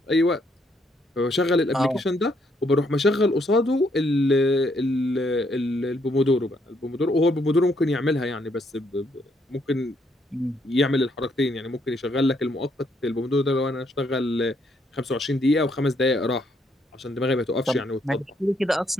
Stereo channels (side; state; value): both; normal; correlation 0.72